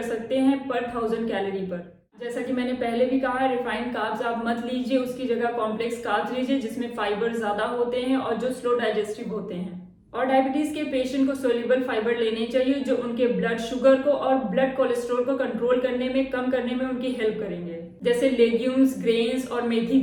सकते हैं पर 1000 कैलोरी पर। जैसा कि मैंने पहले भी कहा है, रिफाइंड कार्ब्स आप मत लीजिए, उसकी जगह कॉम्प्लेक्स कार्ब्स लीजिए जिसमें फाइबर ज़्यादा होते हैं और जो स्लो डाइजेस्टिव होते हैं। और डायबिटीज़ के पेशेंट को सोल्यूबल फाइबर लेने चाहिए जो उनके ब्लड शुगर को और ब्लड कोलेस्ट्रॉल को कंट्रोल करने में, कम करने में उनकी हेल्प करेंगे। जैसे लेग्यूम्स, ग्रेन्स और मेथी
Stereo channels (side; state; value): both; identical; correlation 1.00